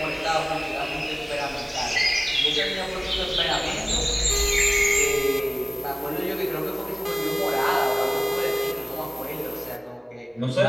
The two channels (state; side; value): identical; both; correlation 1.00